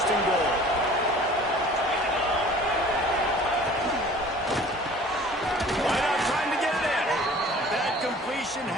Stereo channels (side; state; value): both; normal; correlation 0.48